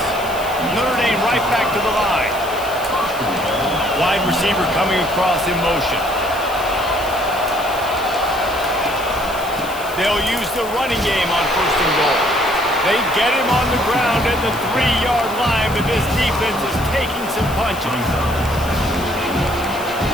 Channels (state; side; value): noise; left; hiss, 15 dB below the sound